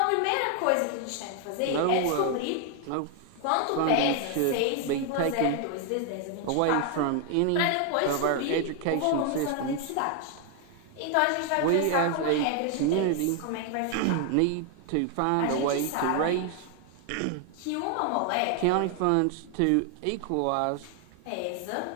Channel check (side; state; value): both; different; correlation 0.00